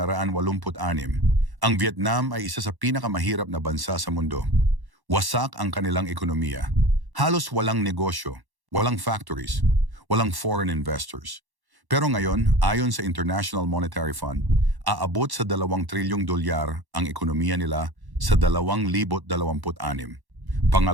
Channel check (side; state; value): left; late; 1.1 ms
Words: ang Vietnam ay isa sa pinakamahirap na bansa sa mundo. Wasak ang kanilang ekonomiya. Halos walang negosyo, walang factories, walang foreign investors. Pero ngayon, ayon sa International Monetary Fund, aabot sa 2 trilyong dolyar ang ekonomiya nila sa 2026.